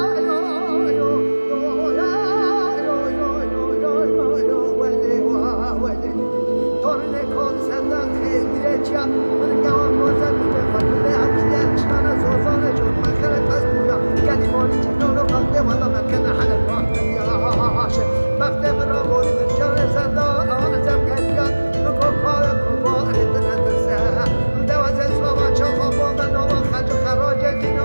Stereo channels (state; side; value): inverted; both; correlation -1.00